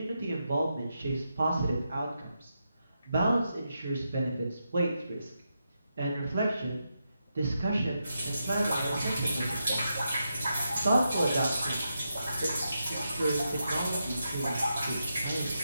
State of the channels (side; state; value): both; inverted; correlation -0.85